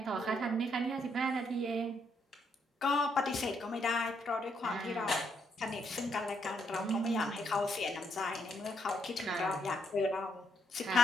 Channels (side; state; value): both; normal; correlation 0.75